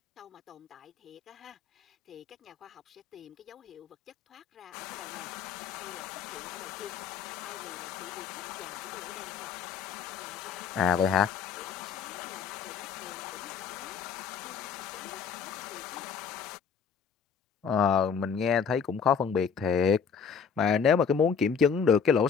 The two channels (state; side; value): quieter; right; 6.6 dB